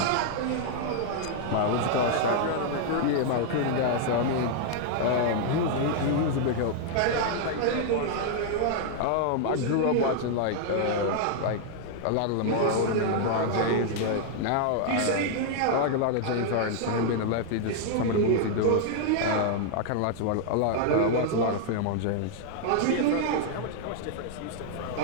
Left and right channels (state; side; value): different; both; correlation -0.01